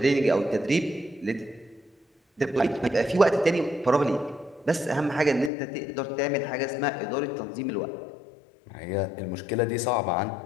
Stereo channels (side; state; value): right; drops out; at 5.5 s